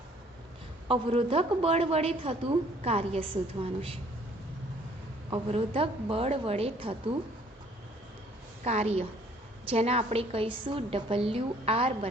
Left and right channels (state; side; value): normal; both; correlation 0.59